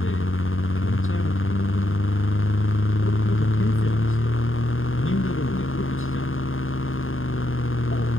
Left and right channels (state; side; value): late; right; 0.59 ms